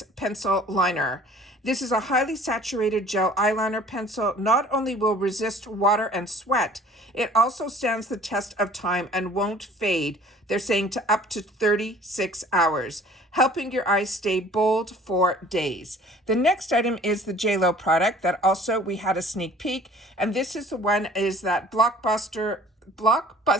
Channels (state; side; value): normal; both; correlation 0.51